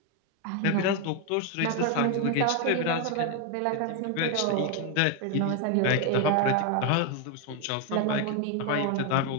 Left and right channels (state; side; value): different; both; correlation 0.01